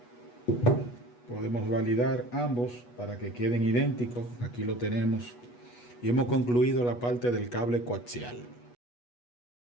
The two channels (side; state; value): right; late; 8.2 ms